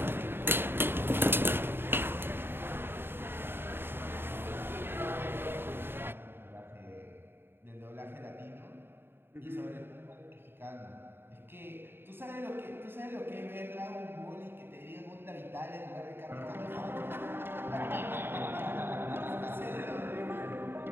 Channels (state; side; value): late; left; 0.11 ms